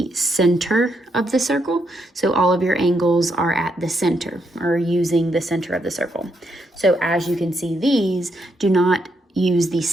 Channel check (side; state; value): both; normal; correlation 0.78